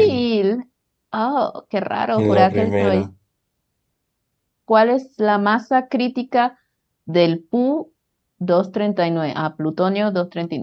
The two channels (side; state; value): both; identical; correlation 1.00